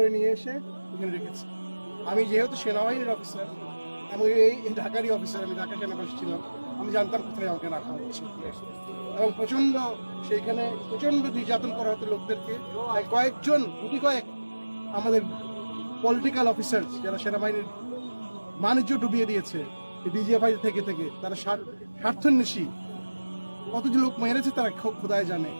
নিয়ে এসে এখানে রেখেছে। আমি যেহেতু সেনাবাহিনীর অফিসার এবং এই ঢাকারই অফিসার, আমি ঢাকা সেনাবাসী ছিলাম, আমি জানতাম কোথায় আমাকে রাখা হচ্ছে এবং সেইখানে প্রচন্ড নির্যাতন করা হতো লোকদেরকে। কয়েকজন আমাদের পলিটিক্যাল অফিসার যারা সেনাবাহিনীর বাণিজ্য ডুবিয়ে দিয়েছে ডিজিএফআই থেকে তারা স্বার্থান্বেষী কতজন লোক মেরেছে তারা খোদায় জানে।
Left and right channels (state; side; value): inverted; both; correlation -1.00